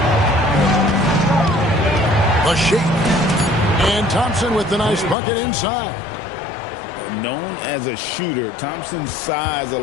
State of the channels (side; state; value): right; drops out; at 5.2 s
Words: The shake. And Thompson with the nice bucket inside. Known as a shooter, Thompson's size